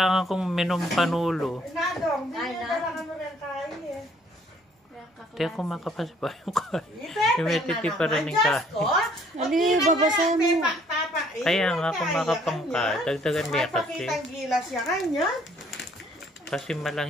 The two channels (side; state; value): both; normal; correlation 0.62